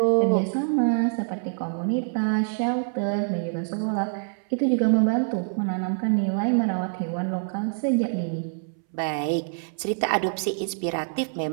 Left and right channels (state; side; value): silent; left; 61 dB below the other